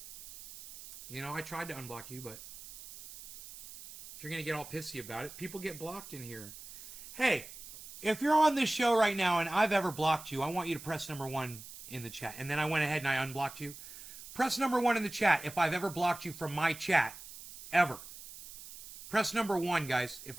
You know, I tried to unblock you, but if you're going to get all pissy about it, people get blocked in here. Hey, if you're on this show right now and I've ever blocked you, I want you to press number 1 in the chat. And then I went ahead and I unblocked you. Press number 1 in the chat if I've ever blocked you from my chat. Ever. Press number 1, guys, if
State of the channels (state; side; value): noise; right; hiss, 14 dB below the sound